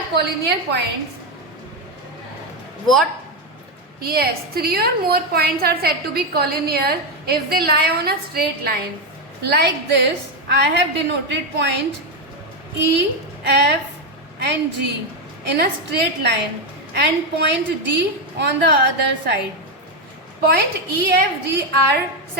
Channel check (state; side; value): normal; both; correlation 0.07